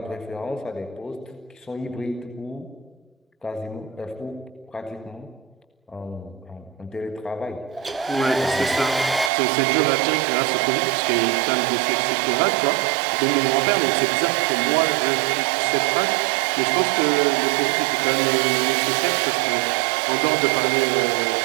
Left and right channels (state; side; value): drops out; left; at 9.3 s